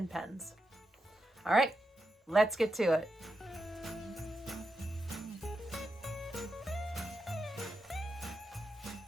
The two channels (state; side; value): normal; both; correlation 0.87